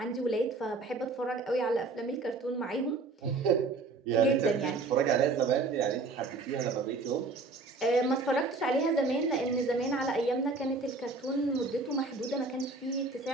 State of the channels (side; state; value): left; quieter; 3.6 dB